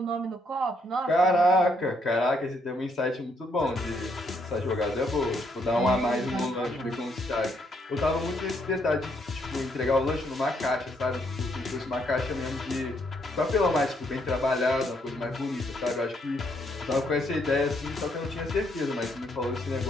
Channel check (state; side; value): normal; both; correlation 0.73